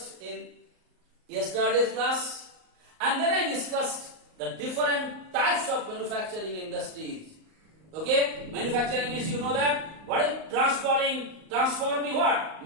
in yesterday's class, and then I discussed the different types of manufacturing industries. Okay, manufacturing means you know that what is transforming what?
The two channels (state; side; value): late; left; 38 ms